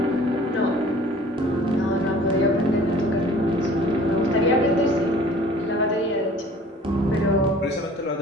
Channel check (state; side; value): normal; both; correlation 0.49